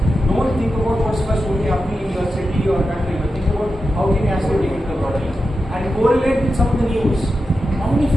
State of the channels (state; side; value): normal; both; correlation 0.90